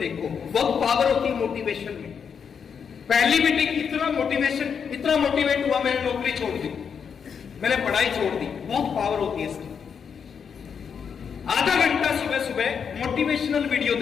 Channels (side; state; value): right; quieter; 6.8 dB